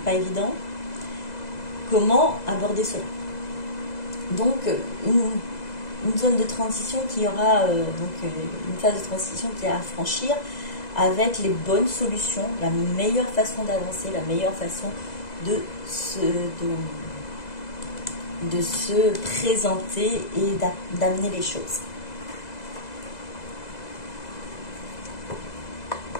pas évident. Comment aborder cela? Donc, une zone de transition qui aura, une phase de transition qui est à franchir avec les bonnes solutions, la meilleure façon d'avancer, la meilleure façon de se présenter et d'amener les choses.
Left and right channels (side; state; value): right; late; 2.0 ms